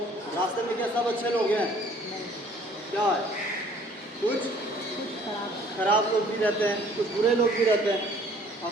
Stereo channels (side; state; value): both; normal; correlation 0.56